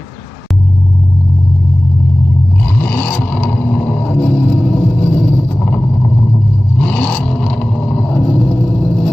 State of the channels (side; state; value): both; normal; correlation 0.97